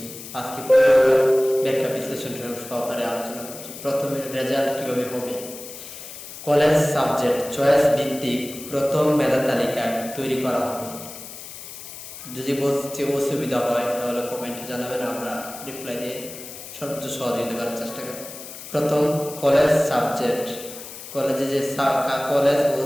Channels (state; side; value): noise; left; hiss, 13 dB below the sound